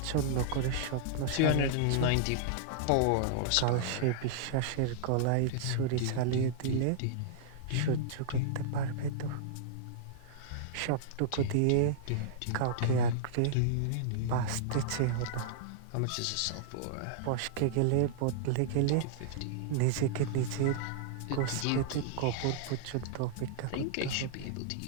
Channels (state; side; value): different; both; correlation -0.02